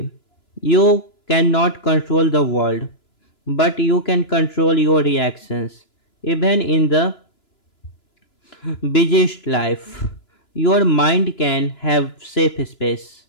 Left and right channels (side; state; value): right; late; 2.9 ms